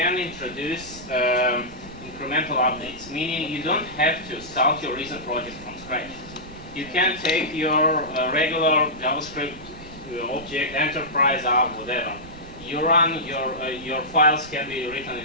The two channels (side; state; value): right; noise; rumble, 19 dB below the sound